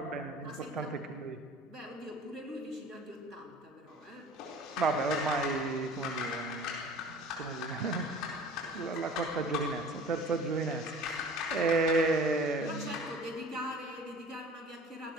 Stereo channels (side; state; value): both; normal; correlation 0.44